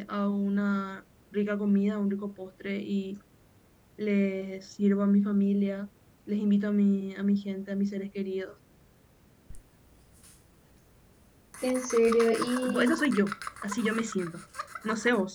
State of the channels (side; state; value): both; identical; correlation 1.00